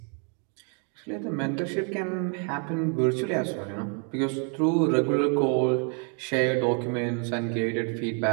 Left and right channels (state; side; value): quieter; left; 39.8 dB